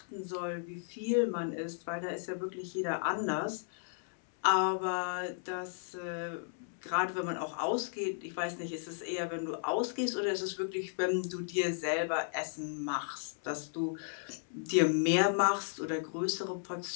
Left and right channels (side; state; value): right; silent; 55 dB below the other